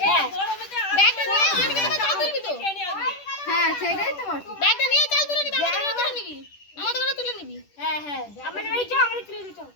গরমেতে ব্যাগটা নিয়ে অঙ্কিতা চাল তুলবি তো হ্যাঁ সেটাই তো বলছি ব্যাগটা নিয়ে চাল তুলে নিবি আমাদের ঘরে তুলে নিবি আমাদের ঘরে তুলে নিবি হ্যাঁ হ্যাঁ আমাদের বাড়ি চল আমাদের তুলে দিতে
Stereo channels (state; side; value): late; right; 10 ms